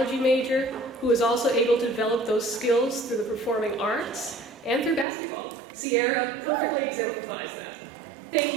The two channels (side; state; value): left; drops out; at 5.1 s